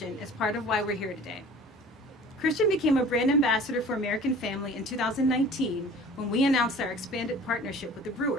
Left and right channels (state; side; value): normal; both; correlation 0.45